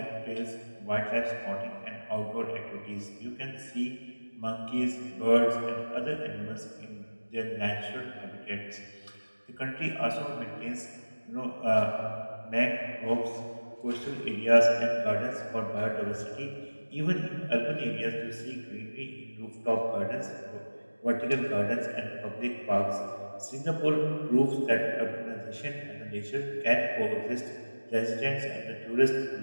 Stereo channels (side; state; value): both; inverted; correlation -1.00